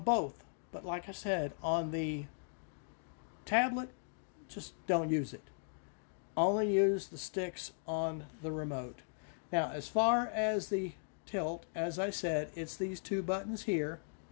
both, but like I said, on the tablet, just don't use it. Only use the sticks on the remote. Now, as far as the tilt, as I said, it's these two buttons here,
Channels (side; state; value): right; silent; digital silence